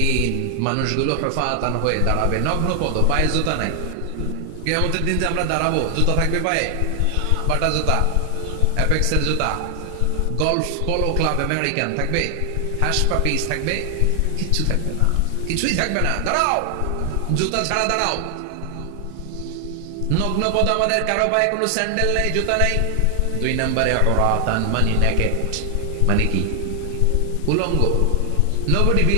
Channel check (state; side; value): different; both; correlation 0.00